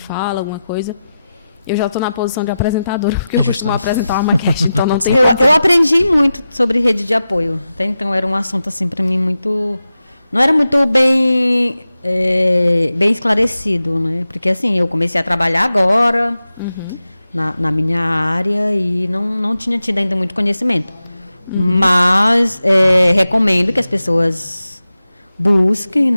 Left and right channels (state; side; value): inverted; both; correlation -0.92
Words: alguma coisa? Eu já estou na posição de apresentadora, porque eu costumo apresentar uma maquete, então não tem... Eu aprendi muito sobre rede de apoio. Até então era um assunto assim para mim muito... Não era muito bem esclarecido, né? Porque assim, eu comecei a trabalhar agora na minha área e não tinha tido ainda muito conhecimento. Mas recomendo que as pessoas busquem,